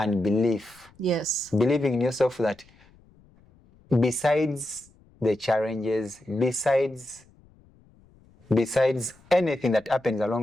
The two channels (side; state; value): left; noise; rumble, 29 dB below the sound